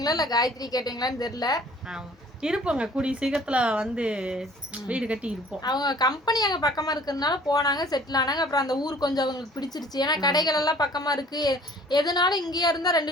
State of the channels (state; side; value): normal; both; correlation 0.52